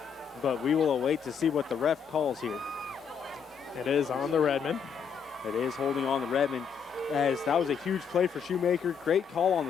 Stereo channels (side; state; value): right; quieter; 6.8 dB